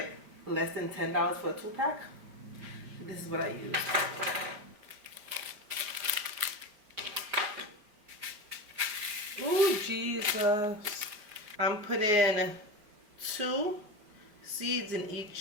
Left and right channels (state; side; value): late; left; 4.8 ms